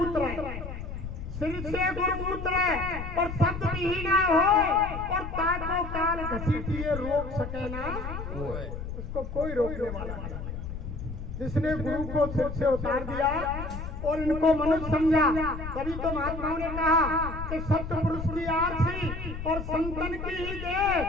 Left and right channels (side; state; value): left; noise; rumble, 7 dB below the sound